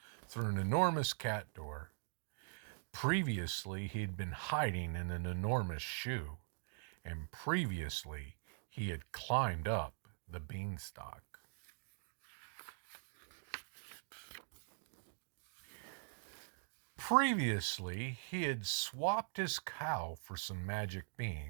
through an enormous cat door. Previously, he had been hiding in an enormous shoe, and previously, he had climbed up the beanstalk. Previously, he had swapped his cow for some magic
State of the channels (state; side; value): silent; left; digital silence